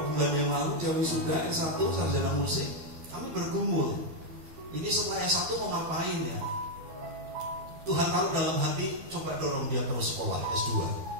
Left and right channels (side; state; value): left; late; 12 ms